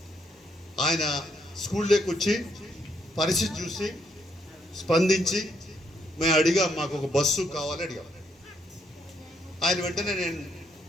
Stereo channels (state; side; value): normal; both; correlation 0.74